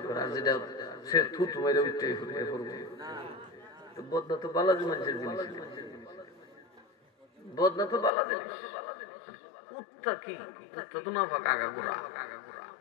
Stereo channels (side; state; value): right; drops out; at 8.1 s